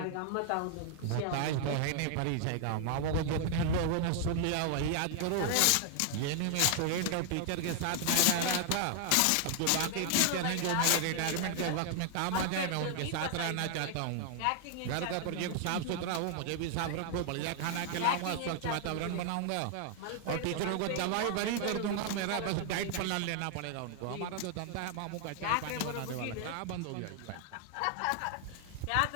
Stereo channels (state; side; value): different; both; correlation 0.00